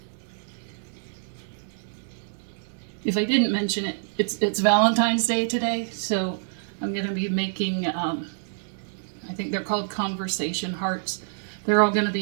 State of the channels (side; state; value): left; silent; digital silence